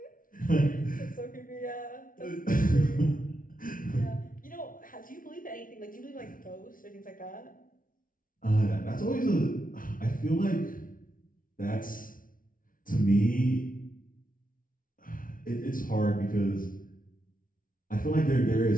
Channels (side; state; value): right; late; 0.39 ms